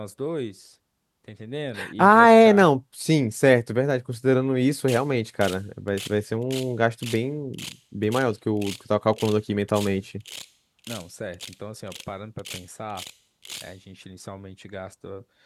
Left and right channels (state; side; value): identical; both; correlation 1.00